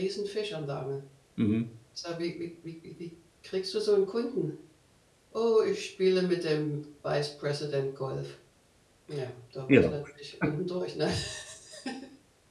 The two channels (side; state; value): both; identical; correlation 1.00